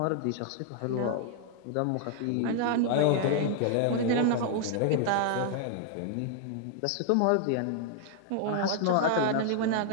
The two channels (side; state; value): both; different; correlation -0.01